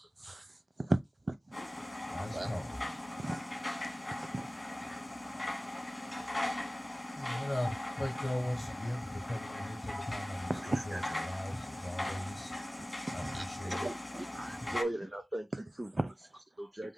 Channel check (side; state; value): both; normal; correlation 0.97